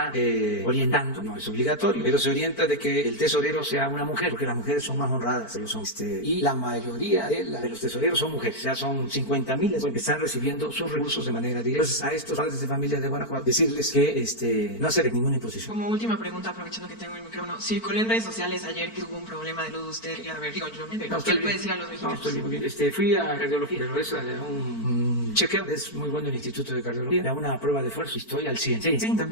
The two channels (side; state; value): right; late; 4.5 ms